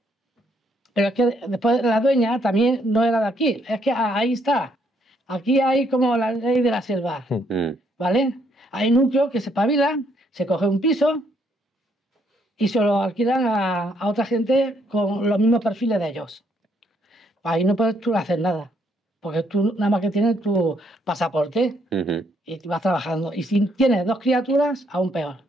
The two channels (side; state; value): both; normal; correlation 0.71